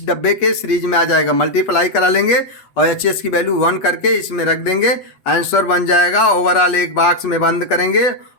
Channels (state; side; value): late; right; 8.2 ms